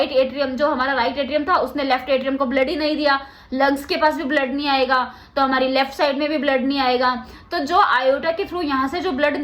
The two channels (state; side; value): identical; both; correlation 1.00